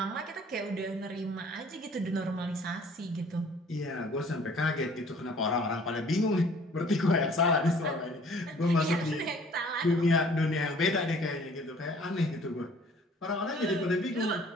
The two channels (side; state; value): both; normal; correlation 0.54